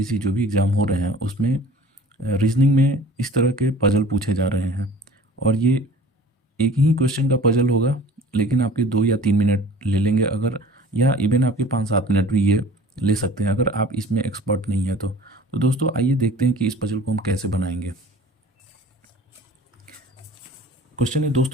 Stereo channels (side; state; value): both; normal; correlation 0.45